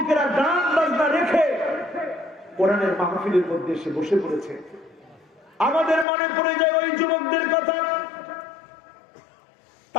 গান বাজনা রেখে কোরআনের মাহফিলের মধ্যে এসে বসে পড়েছে, আমাদের মনে পড়ে যায় ওই যুবকদের কথা।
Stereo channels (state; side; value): drops out; right; at 6.1 s